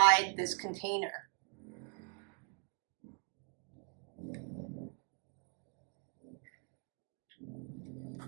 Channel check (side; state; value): left; quieter; 38.1 dB